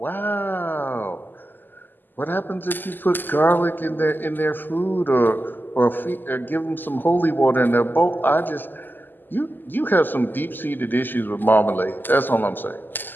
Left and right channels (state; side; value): late; right; 0.090 ms